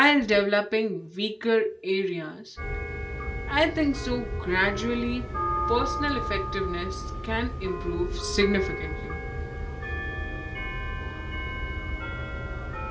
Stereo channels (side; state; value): both; identical; correlation 1.00